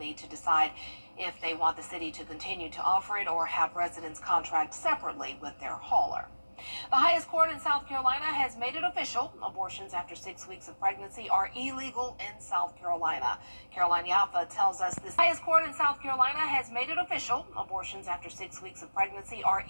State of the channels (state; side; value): inverted; both; correlation -1.00